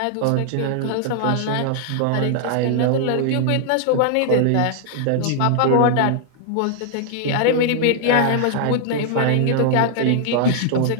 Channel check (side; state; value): both; different; correlation 0.00